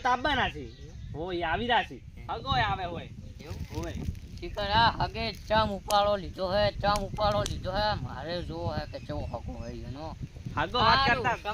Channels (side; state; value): both; identical; correlation 1.00